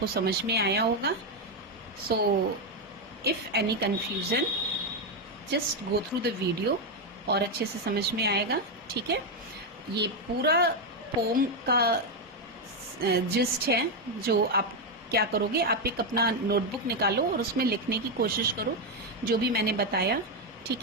समझ में आया होगा। So if any confusion, just go through the video और अच्छे से समझ में आएगा। ठीक है, ये पूरा पोम का जिस्ट है। जो आप क्या करोगे, आप एक अपना नोटबुक निकालो और उसमें लिखने की कोशिश करो जो भी मैंने बताया। ठीक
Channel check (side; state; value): both; normal; correlation 0.05